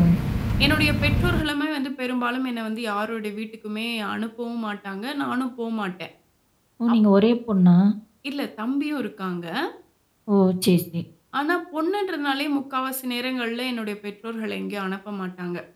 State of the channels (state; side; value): identical; both; correlation 1.00